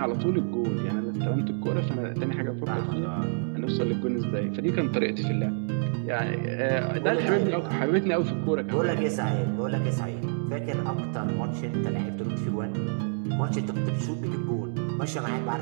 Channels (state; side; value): silent; left; digital silence